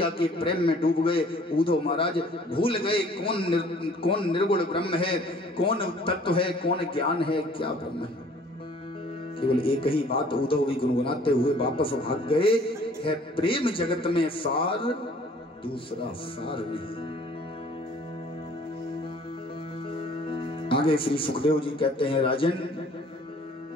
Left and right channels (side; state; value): both; normal; correlation 0.54